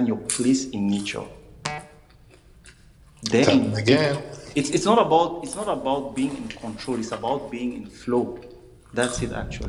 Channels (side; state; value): both; identical; correlation 1.00